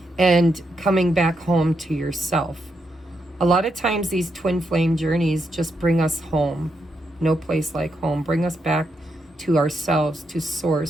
and coming back home to yourself. A lot of times these twin flame journeys just bring us home. No place like home. Bring us back to ourselves, to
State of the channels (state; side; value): normal; both; correlation 0.82